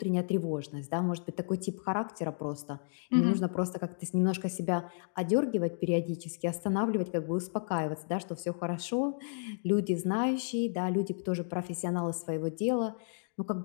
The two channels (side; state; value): right; silent; digital silence